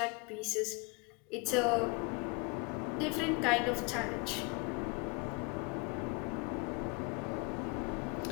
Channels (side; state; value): right; quieter; 30.1 dB